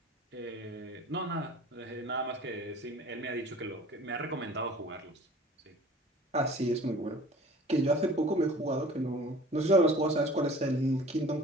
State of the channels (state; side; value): normal; both; correlation 0.46